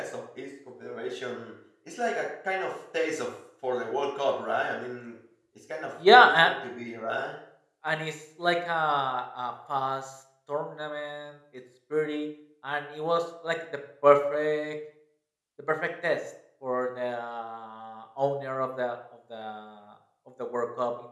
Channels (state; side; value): identical; both; correlation 1.00